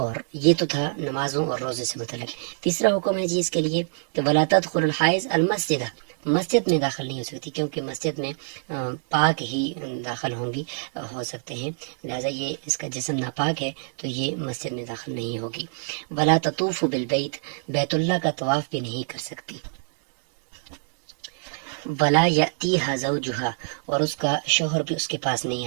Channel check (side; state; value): left; silent; digital silence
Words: یہ تو تھا نمازوں اور روزے سے متعلق. تیسرا حکم ہے جی اس کے لیے کہ ولا تدخل الحائض المسجد، مسجد میں داخل نہیں ہو سکتی، کیونکہ مسجد میں پاک ہی داخل ہو سکتے ہیں. لہذا یہ اس کا جسم ناپاک ہے تو یہ مسجد میں داخل نہیں ہوگی. ولا تطوف بالبیت، بیت اللہ کا طواف بھی نہیں کر سکتی. ولا یأتیہا زوجہا، اور اس کا شوہر بھی اس کے پاس نہیں